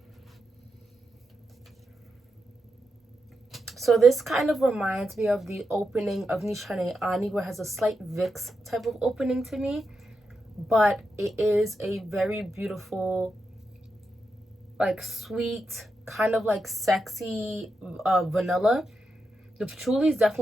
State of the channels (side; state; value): both; normal; correlation 0.86